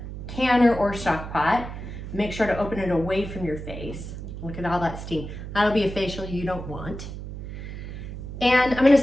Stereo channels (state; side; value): noise; right; hum, 9 dB below the sound